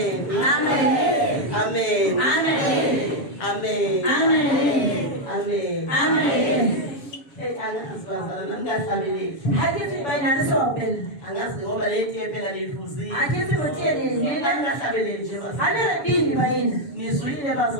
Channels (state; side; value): late; right; 7.1 ms